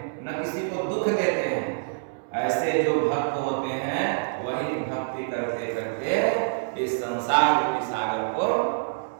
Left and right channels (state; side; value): silent; left; digital silence